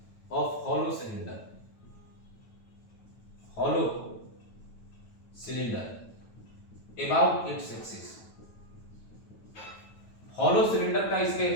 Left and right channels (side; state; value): right; late; 9.2 ms